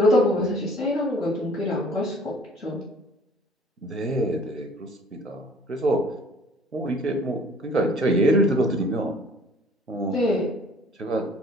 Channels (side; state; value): both; normal; correlation 0.53